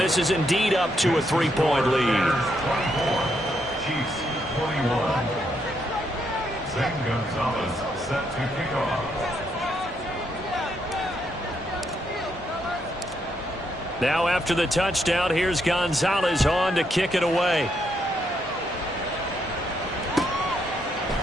is indeed up to a 3-point lead. 24, Chiefs 21. Zane Gonzalez set to kick off. Now after the touchdown, here's Gonzalez on to kick it away.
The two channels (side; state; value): both; normal; correlation 0.77